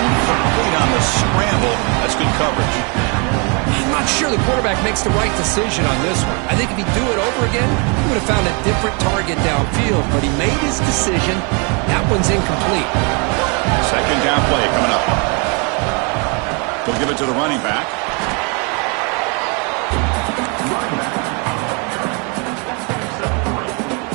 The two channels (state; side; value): quieter; left; 33.9 dB